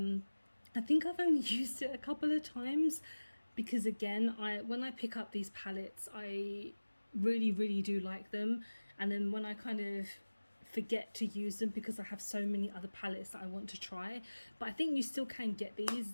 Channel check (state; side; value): inverted; both; correlation -1.00